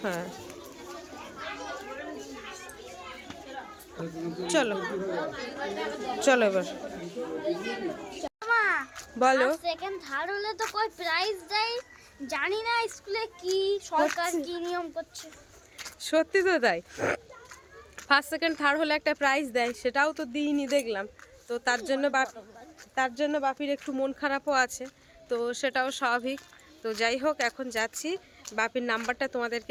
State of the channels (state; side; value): identical; both; correlation 1.00